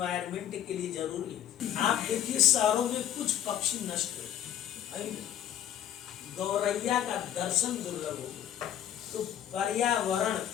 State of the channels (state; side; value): quieter; right; 10.6 dB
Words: के लिए जरूरी है। आप देखिए शहरों में कुछ पक्षी नष्ट हो, गौरैया का दर्शन दुर्लभ हो गया, तो पर्यावरण